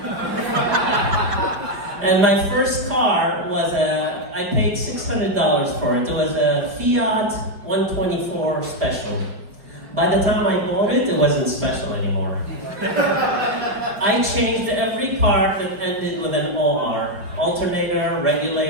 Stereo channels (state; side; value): late; left; 5.1 ms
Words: And my first car was I paid $600 for it. It was a Fiat 124 Special. By the time I bought it, it wasn't special anymore. I changed every part that ended with an OR. Alternator,